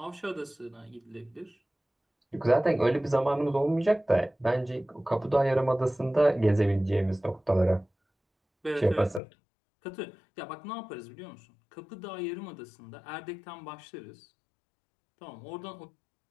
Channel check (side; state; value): right; drops out; at 9.2 s